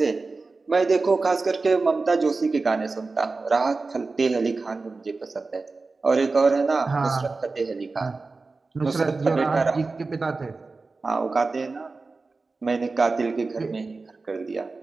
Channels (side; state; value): left; quieter; 3.8 dB